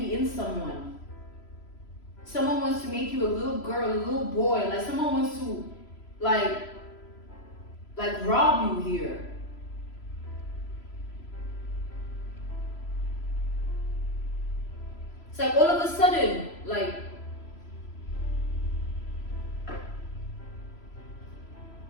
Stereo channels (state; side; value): late; right; 3.0 ms